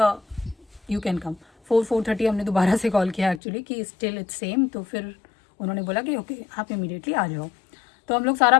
यू कैन कम। 4-4:30 हमने दोबारा से कॉल किया एक्चुअली कि स्टिल इट्स सेम। तो फिर उन्होंने बोला कि ओके आप इमीडिएटली आ जाओ। तो हम लोग सारा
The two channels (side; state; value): right; drops out; at 3.4 s